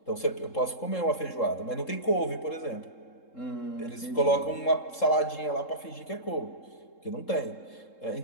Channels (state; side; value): late; right; 3.7 ms